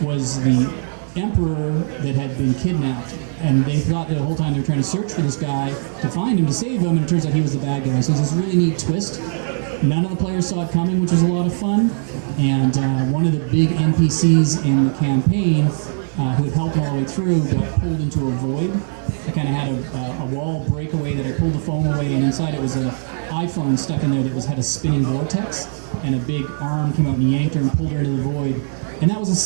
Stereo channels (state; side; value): silent; left; digital silence